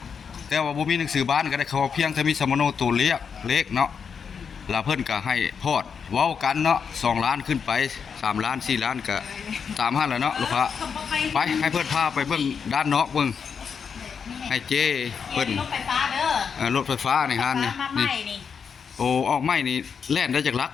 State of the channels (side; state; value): right; quieter; 6.4 dB